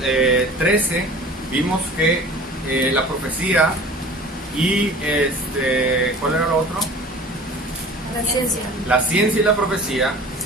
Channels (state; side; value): normal; both; correlation 0.42